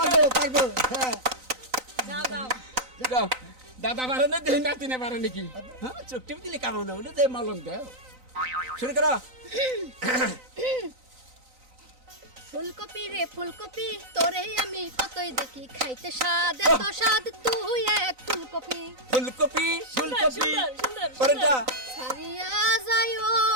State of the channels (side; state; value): left; late; 3.9 ms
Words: পারবো হ্যাঁ যাও যাও যাও দাদা পারে না দেহ নাতিনে পারে নাকি হ্যাঁ চোখ টিপ দিলে কামো না যে মালন দেও শুরু করো ফুলকপি রে ফুলকপি তোরে আমি কতই দেখি খাইতে স্বাদ এত স্বাদ তুই এক ফুলকপি ফুলকপি ফুলকপি সুন্দর, সুন্দর, পরেটা ছাড়িয়া যাইও